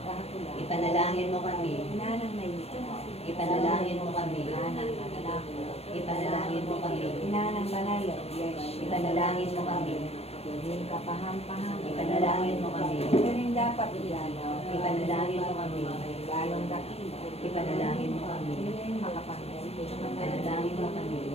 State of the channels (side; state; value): right; late; 0.30 ms